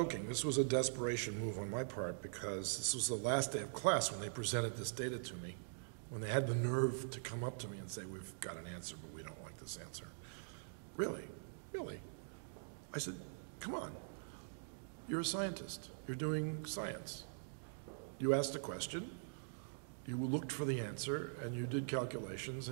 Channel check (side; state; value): left; silent; digital silence